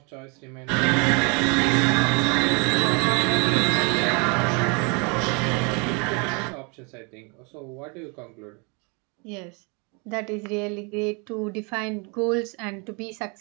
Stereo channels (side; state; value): left; quieter; 32.4 dB